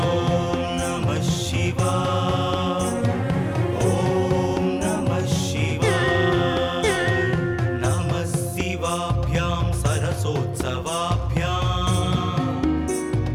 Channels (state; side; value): identical; both; correlation 1.00